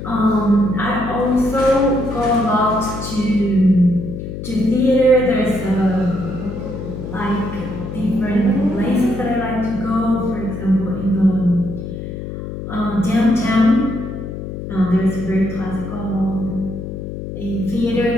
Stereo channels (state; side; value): noise; left; hum, 8 dB below the sound